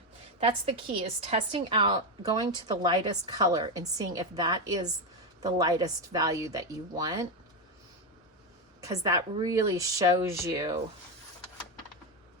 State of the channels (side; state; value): both; normal; correlation 0.10